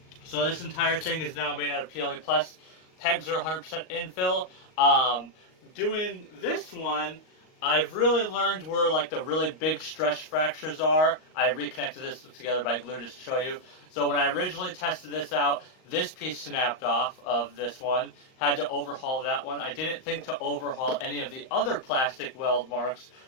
So this entire thing is now made out of PLA Plus. Pegs are 100% infill. Doing this one, I've really learned where like the really big stress fractures are. I reconnected this together by glue just to show you. So when I originally tested this out, this piece snapped off of this one. Had to overhaul that one. I didn't think to overhaul any of the other plastic weld marks,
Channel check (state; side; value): late; right; 38 ms